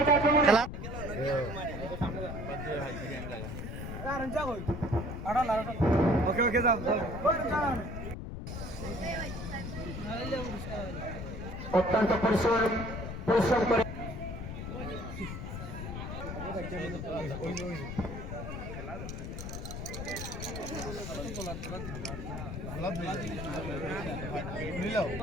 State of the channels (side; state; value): left; noise; rumble, 6 dB below the sound